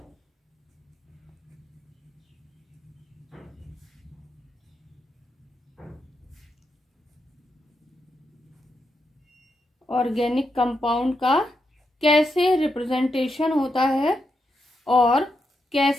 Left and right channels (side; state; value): both; normal; correlation 0.84